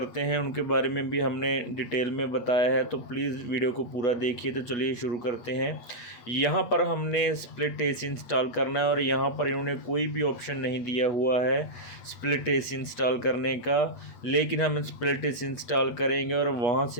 हैं उनके बारे में भी हमने डिटेल में बताया है। तो प्लीज़ वीडियो को पूरा देखिए। तो चलिए शुरू करते हैं। यहाँ पर हमने स्प्लिट एसी इंस्टॉल करना है और यहाँ पर इन्होंने कोई भी ऑप्शन नहीं दिया हुआ है स्प्लिट एसी इंस्टॉल करने का, लेकिन हम स्प्लिट एसी इंस्टॉल करेंगे और वहाँ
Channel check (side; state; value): right; late; 8.3 ms